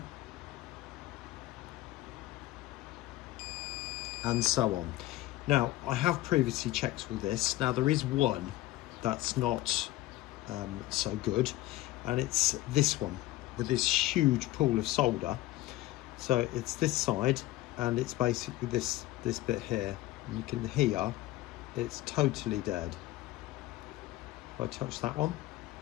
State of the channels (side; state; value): right; quieter; 16.8 dB